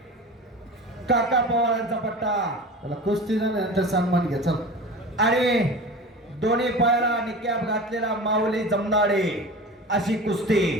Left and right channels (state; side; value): normal; both; correlation 0.33